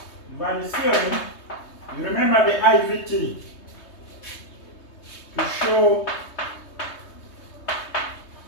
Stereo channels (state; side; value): late; right; 3.2 ms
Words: value theorem. You remember the IVT to show